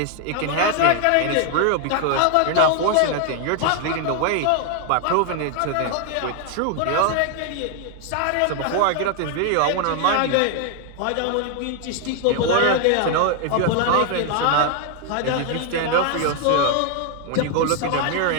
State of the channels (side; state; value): both; different; correlation 0.00